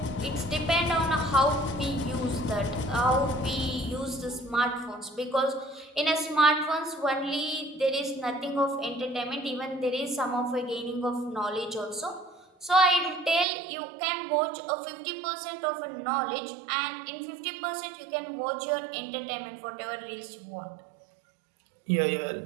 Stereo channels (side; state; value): left; drops out; at 13.5 s